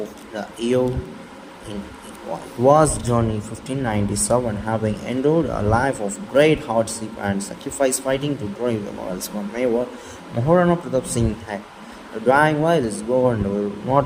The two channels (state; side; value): identical; both; correlation 1.00